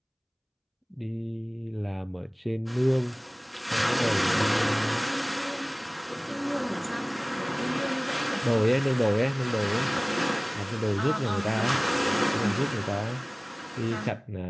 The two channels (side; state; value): both; identical; correlation 1.00